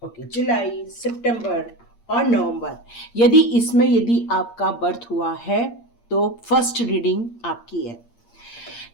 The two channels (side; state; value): right; late; 8.6 ms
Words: जुलाई, सितंबर और नवंबर, यदि आपका बर्थ हुआ है तो फर्स्ट रीडिंग आपकी है।